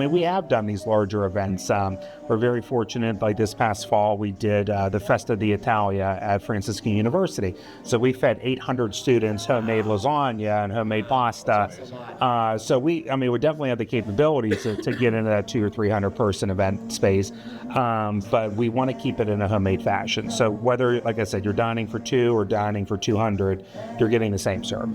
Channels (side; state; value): both; identical; correlation 1.00